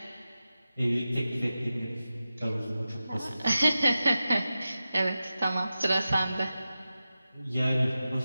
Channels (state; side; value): inverted; both; correlation -0.93